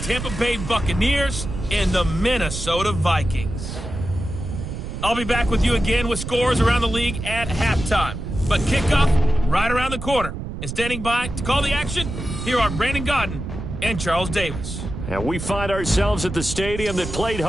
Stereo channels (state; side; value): noise; right; rumble, 7 dB below the sound